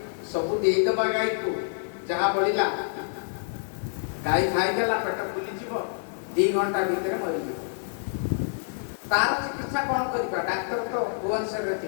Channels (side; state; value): right; silent; 60 dB below the other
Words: सबू देदबा गाई को, जहाँ बड़ा गाई खाईदेला पेट फुलीज, 2 घंटा भितर मरीज। तार चिकित्सा कौन करवा? डाक्तर तो भुवनेश्वर